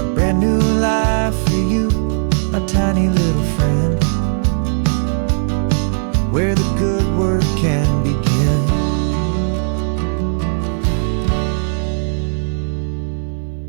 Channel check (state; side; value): silent; left; 62 dB below the other